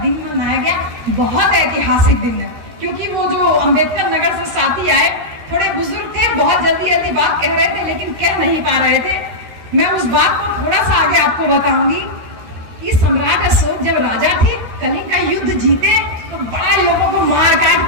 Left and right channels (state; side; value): late; left; 13 ms